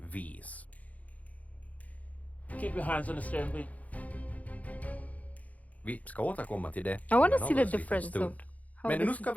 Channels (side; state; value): right; late; 0.071 ms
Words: Keep your hands on the steering wheel. Vi ska återkomma till det. I want to en see the alldeles liten difference stund. of how Men nu this ska is